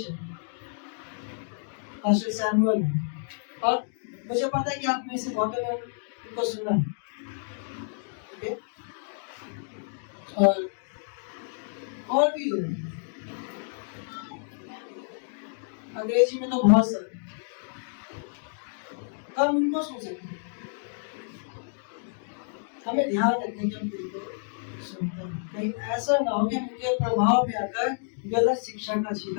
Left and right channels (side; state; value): right; silent; digital silence